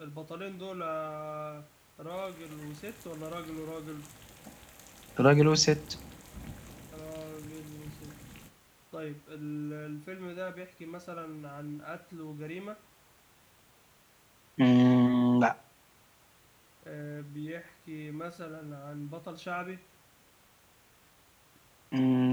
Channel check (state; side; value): identical; both; correlation 1.00